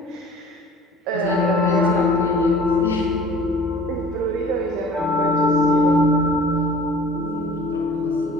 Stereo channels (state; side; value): normal; both; correlation 0.47